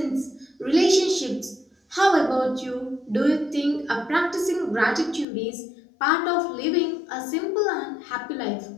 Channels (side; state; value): right; drops out; at 5.2 s